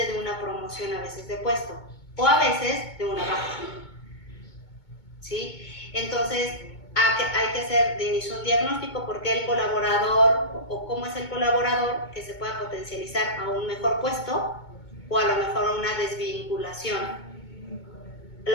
de una promoción a veces de puesto o a veces de una baja, ¿sí? Entonces hay que hacer de inicio un diagnóstico porque el colaborador o cómo es el colaborador que se pueda potencializar a un mejor puesto o a lo mejor a una desvinculación.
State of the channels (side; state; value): right; late; 2.2 ms